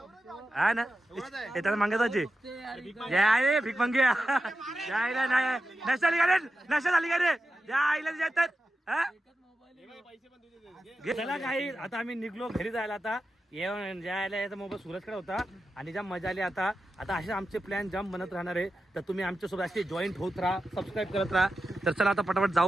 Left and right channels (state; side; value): normal; both; correlation 0.91